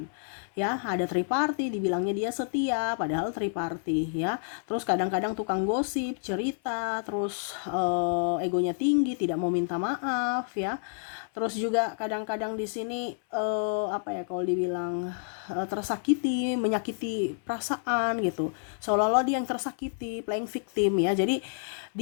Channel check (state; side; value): silent; right; 59 dB below the other